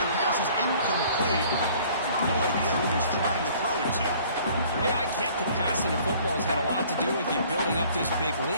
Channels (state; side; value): inverted; both; correlation -0.54